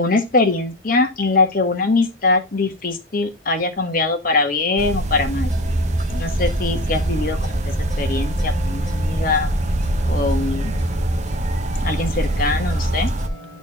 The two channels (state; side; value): normal; both; correlation 0.34